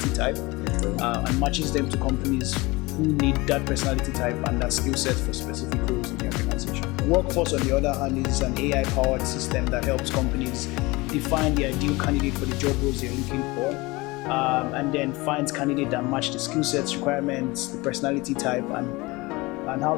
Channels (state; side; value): quieter; right; 23.1 dB